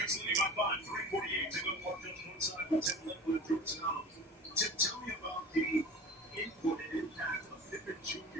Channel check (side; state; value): both; normal; correlation 0.36